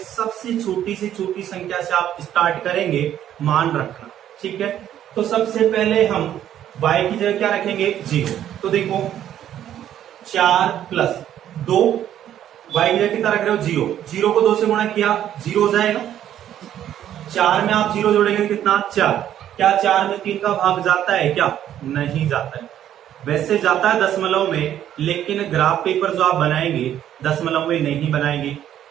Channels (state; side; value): quieter; left; 11.0 dB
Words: छोटी से छोटी संख्या से आप स्टार्ट करेंगे मान रखना। ठीक है, तो सबसे पहले हम y की जगह क्या रखेंगे 0। तो देखो 4 प्लस 2, y की जगह कितना रख रहे हो 0, 0 को 2 से गुणा किया 0 हो जाएगा, 4 में आप 0 जोड़ेंगे कितना 4। क्या 4 में 3 का भाग जाता है क्या, नहीं जाता है। वैसे जाता है दशमलव में, लेकिन ग्राफ पेपर जो आप बनाएंगे दशमलव में नहीं बनाएंगे।